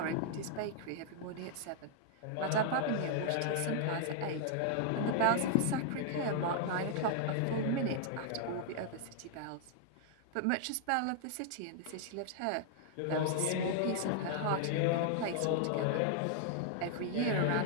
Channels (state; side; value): different; both; correlation -0.01